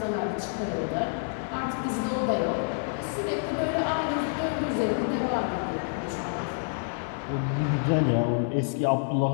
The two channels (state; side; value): silent; right; 59 dB below the other